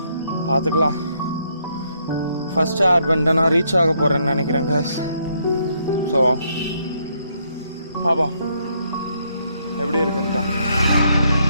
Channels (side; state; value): both; inverted; correlation -0.74